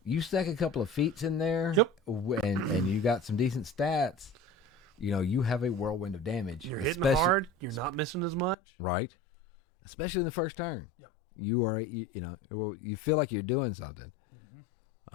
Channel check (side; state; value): right; drops out; at 8.6 s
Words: You stack a couple of feats in there, yep. and you got some decent stats. You have a whirlwind of damage. You're hitting hard. You're not missing as much. Right. Especially in the first turn. Yep. You are, you feel like you're doing something. Mm-hmm.